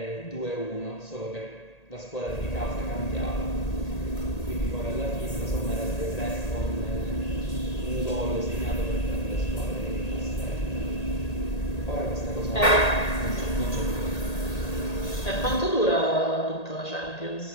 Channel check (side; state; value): right; late; 1.8 ms